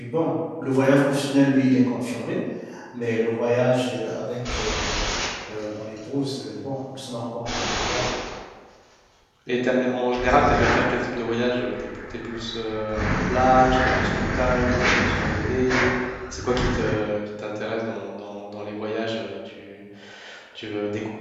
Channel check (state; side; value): identical; both; correlation 1.00